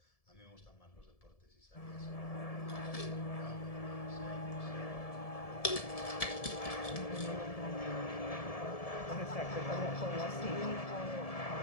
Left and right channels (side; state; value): right; late; 1.7 ms